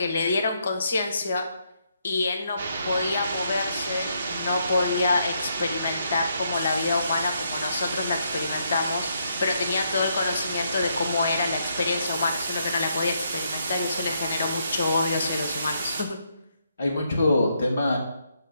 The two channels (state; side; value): inverted; both; correlation -0.76